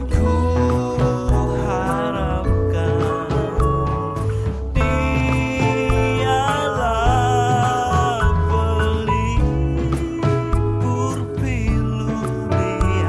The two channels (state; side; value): identical; both; correlation 1.00